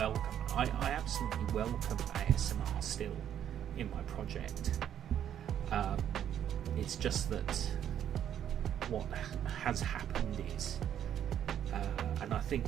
I absolutely welcome ASMR still in my project. It's just that what has happened is, and I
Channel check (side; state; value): left; quieter; 9.9 dB